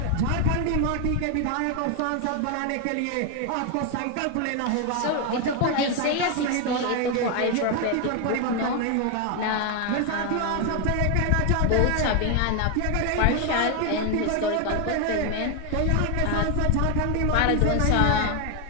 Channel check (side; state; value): both; different; correlation 0.01